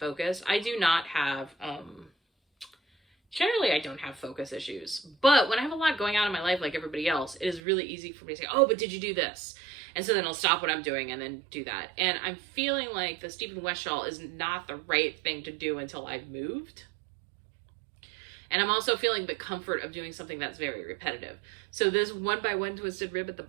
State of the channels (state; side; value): drops out; left; at 7.6 s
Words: I do not have, generally I don't have focus issues, but when I have a lot going on in my life like everybody else, it is really easy for me to say, oh, but did you do this? And so then I'll stop what I'm doing and then do that. And I'm feeling like the Stephen West shawl is not the right thing to do until I've moved. And I'm also feeling the comfort of doing something that's very repetitive. So this 1x1 twisted rib at the